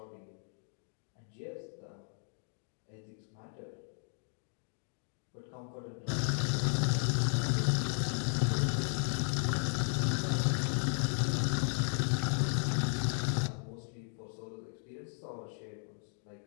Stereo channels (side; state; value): right; silent; 54 dB below the other